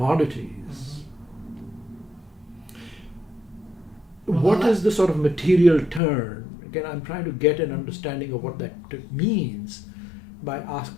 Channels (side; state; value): right; drops out; at 6.0 s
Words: What is the sort of material turn? Again, I'm trying to get an understanding of what that means by